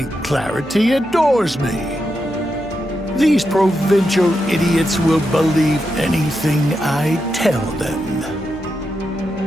Clarity adores me. These provincial idiots will believe anything I tell them.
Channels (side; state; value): left; noise; hum, 18 dB below the sound